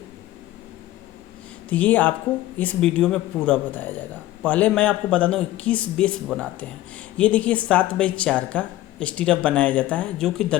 तो ये आपको इस वीडियो में पूरा बताया जाएगा। पहले मैं आपको बता दूं किस बेस बनाते हैं। ये देखिए 7x4 का स्टीरअप बनाया जाता है जो कि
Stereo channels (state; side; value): quieter; right; 15.4 dB